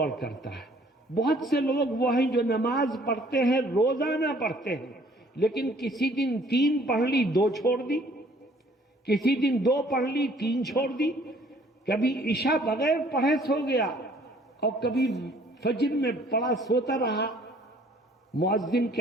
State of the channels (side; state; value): both; normal; correlation 0.58